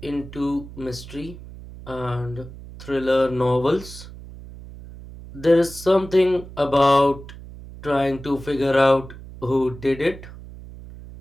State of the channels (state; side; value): noise; right; hum, 15 dB below the sound